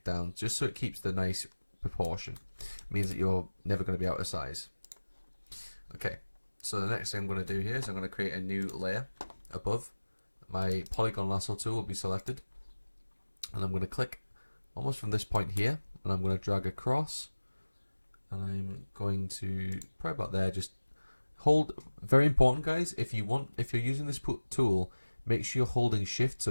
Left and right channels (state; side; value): inverted; both; correlation -1.00